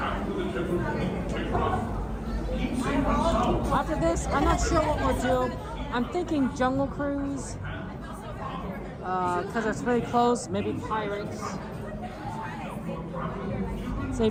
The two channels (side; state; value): both; identical; correlation 1.00